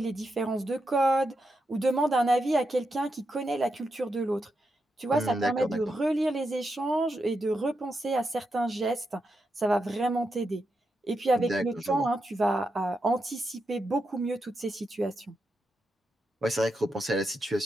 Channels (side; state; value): both; normal; correlation 0.85